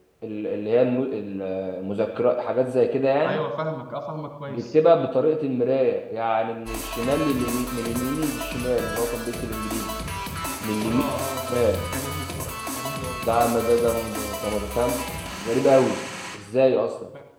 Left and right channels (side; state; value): both; identical; correlation 1.00